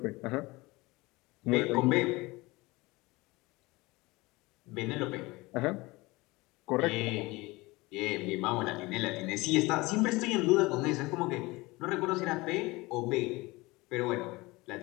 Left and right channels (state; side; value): quieter; right; 22.3 dB